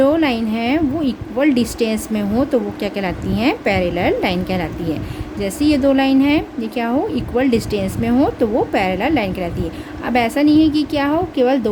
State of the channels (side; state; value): both; identical; correlation 1.00